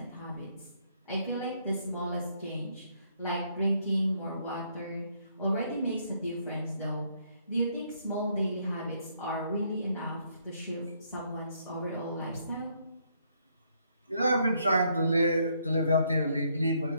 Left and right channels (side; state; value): both; inverted; correlation -0.70